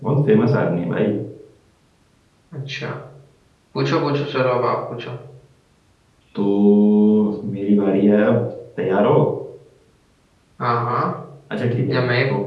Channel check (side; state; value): both; identical; correlation 1.00